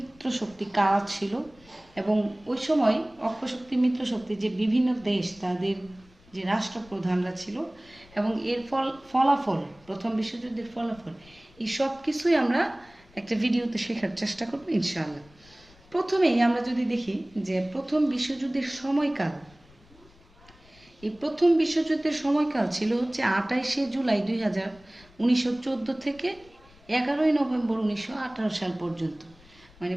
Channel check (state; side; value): noise; left; rumble, 27 dB below the sound